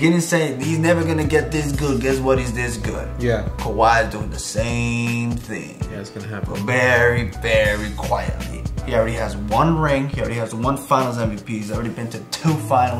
saying he's never gonna get this good. Guess what? He's this good. Yeah. Kawhi is doing the same thing. Yeah, it's gonna happen. But very, very quietly. He already has 1 ring. He already has 1 Finals MVP. He's already been to 2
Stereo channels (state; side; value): identical; both; correlation 1.00